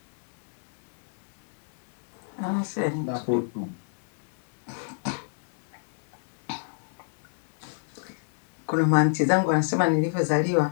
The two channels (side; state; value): right; silent; digital silence